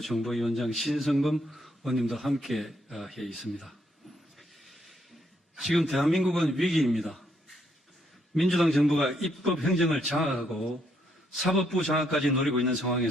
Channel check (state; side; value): normal; both; correlation 0.74